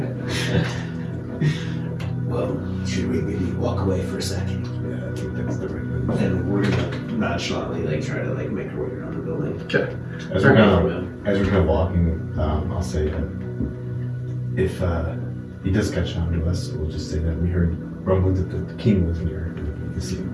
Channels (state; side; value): identical; both; correlation 1.00